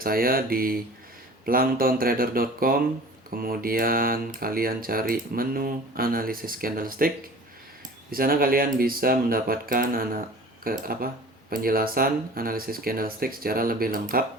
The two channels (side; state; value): both; normal; correlation 0.42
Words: saya di planktontrader.com. Kemudian kalian cari menu analisis candlestick. Di sana kalian bisa mendapatkan penjelasan analisis candlestick secara lebih lengkap